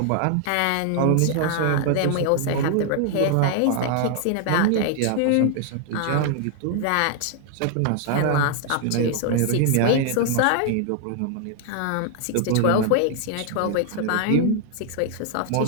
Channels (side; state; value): both; different; correlation 0.00